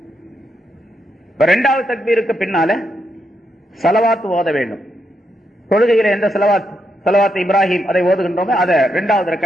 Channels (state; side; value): normal; both; correlation 0.81